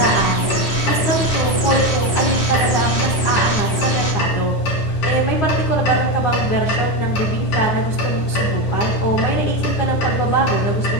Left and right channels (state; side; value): late; right; 9.9 ms